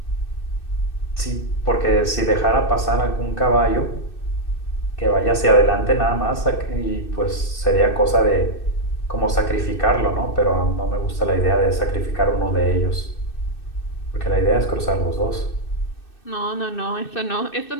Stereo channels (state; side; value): late; right; 2.6 ms